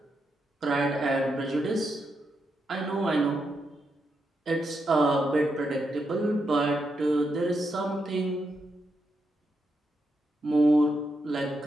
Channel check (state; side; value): normal; both; correlation 0.83